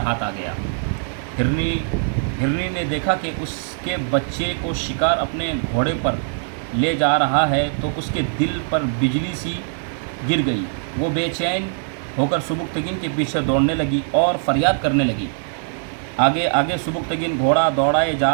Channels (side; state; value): left; silent; digital silence